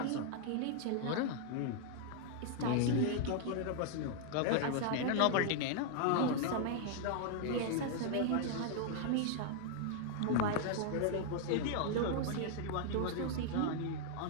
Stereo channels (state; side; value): different; both; correlation 0.00